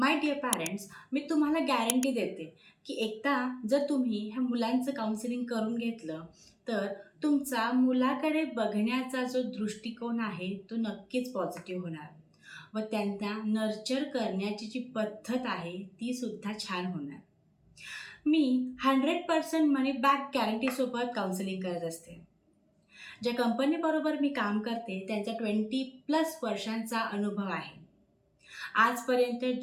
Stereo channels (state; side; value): identical; both; correlation 1.00